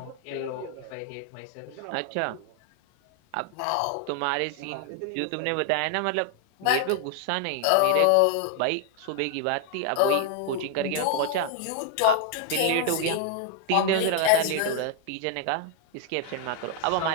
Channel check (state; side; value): different; both; correlation 0.00